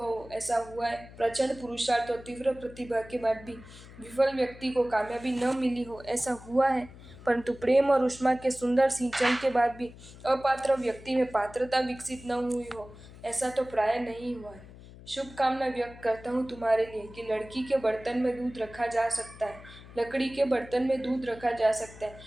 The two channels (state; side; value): noise; left; hum, 18 dB below the sound